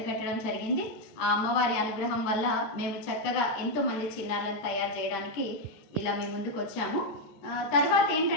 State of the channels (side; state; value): right; late; 14 ms